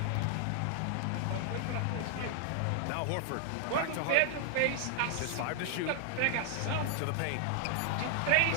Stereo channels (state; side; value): different; both; correlation 0.00